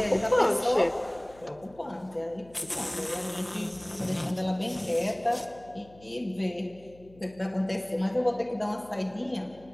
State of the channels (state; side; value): noise; left; hum, 24 dB below the sound